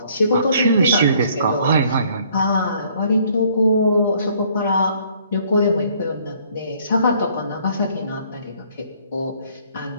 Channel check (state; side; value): inverted; both; correlation -0.62